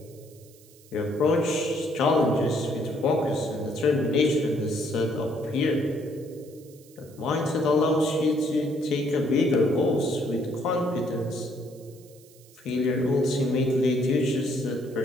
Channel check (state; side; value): noise; right; hiss, 26 dB below the sound